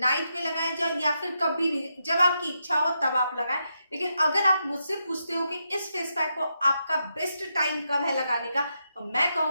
में लगाएं, या फिर कभी भी जब आपकी इच्छा हो तब आप लगाएं। लेकिन अगर आप मुझसे पूछते हो कि इस फेस पैक को आपका बेस्ट टाइम कब है लगाने का, तो मैं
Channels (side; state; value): both; inverted; correlation -0.83